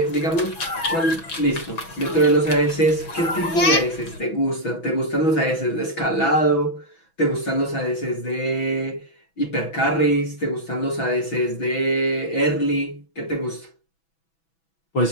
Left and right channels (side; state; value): right; late; 6.1 ms